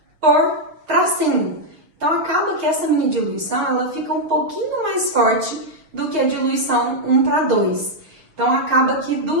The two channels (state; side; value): late; left; 6.4 ms